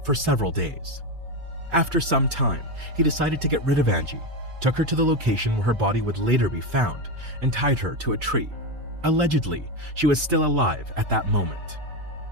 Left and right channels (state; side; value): late; left; 4.9 ms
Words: for several days. After some time, he decided to get rid of Angie, took her to the location where her body would later be found, and tied her to a tree. Allegedly, she was still alive at that moment.